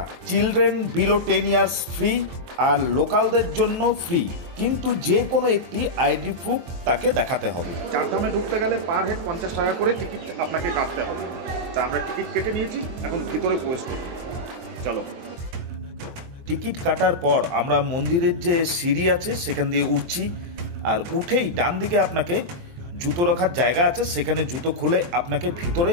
চিলড্রেন বিলো 10 ইয়ার্স ফ্রি, আর লোকালদের জন্য ফ্রি, কিন্তু যে কোনো একটি আইডি প্রুফ তাকে দেখাতে হবে। চারধামে ঢুকতে গেলে পার হেড 50 টাকা করে টিকিট আপনাকে কাটতে হবে। তা আমরা টিকিট কেটে নিয়েছি, এখন ভিতরে প্রবেশ করব। চলো। টিকিট কাটার পর আমরা মন্দিরের যে সিঁড়ি আছে সেখান দিয়ে উঠছি, আর উঠেই ডান দিকে আপনাকে জুতো রাখার জায়গা আছে, সেখানে জুতো খুলে আপনাকে ভিতরে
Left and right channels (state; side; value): late; left; 23 ms